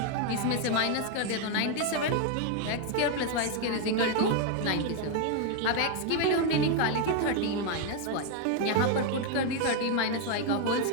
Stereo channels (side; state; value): both; different; correlation 0.01